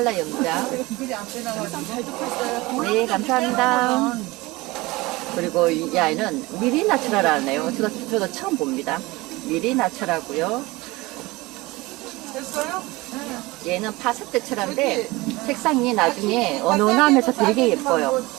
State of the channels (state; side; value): quieter; left; 21.6 dB